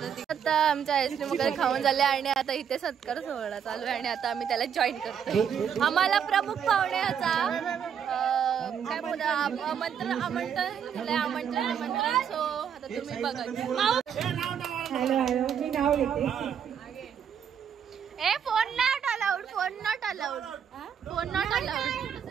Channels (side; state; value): left; quieter; 8.2 dB